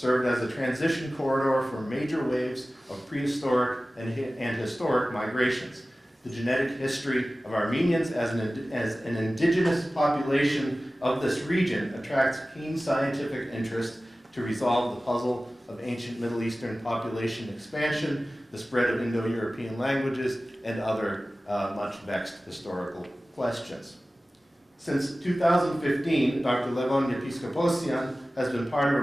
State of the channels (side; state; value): both; normal; correlation 0.96